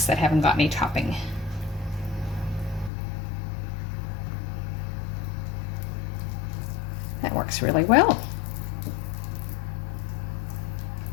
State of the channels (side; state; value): right; drops out; at 2.9 s